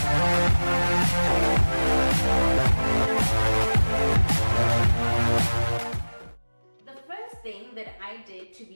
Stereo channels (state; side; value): inverted; both; correlation -1.00